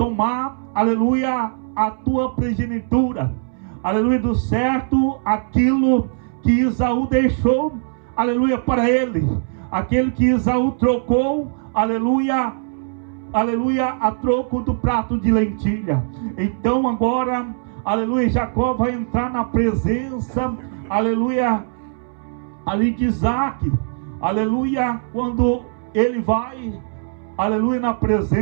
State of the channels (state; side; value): silent; left; 65 dB below the other